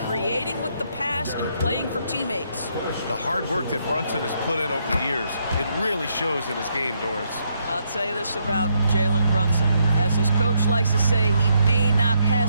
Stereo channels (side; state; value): both; inverted; correlation -0.75